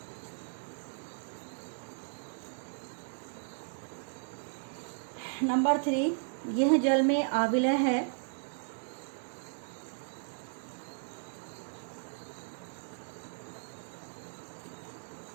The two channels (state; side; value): silent; left; digital silence